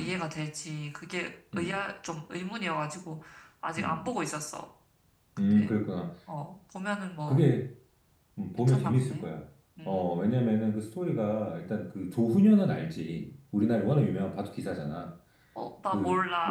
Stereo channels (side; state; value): both; identical; correlation 1.00